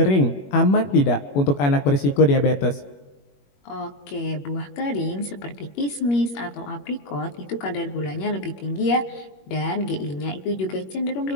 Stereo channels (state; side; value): late; right; 21 ms